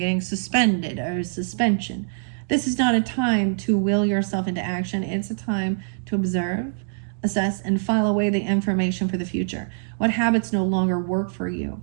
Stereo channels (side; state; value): left; silent; digital silence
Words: suspended or suspension. This is not a time to will yourself into action. It's a time to observe, assess, and file away the information for the future. What habits no longer work for you?